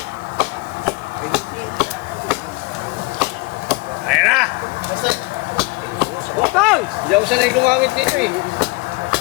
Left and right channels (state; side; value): quieter; right; 24.9 dB